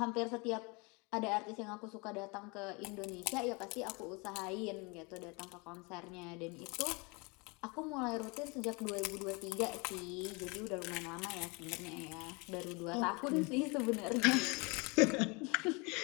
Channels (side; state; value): right; quieter; 28.9 dB